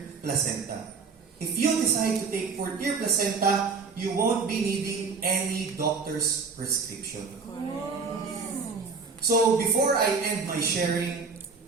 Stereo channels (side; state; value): left; quieter; 4.9 dB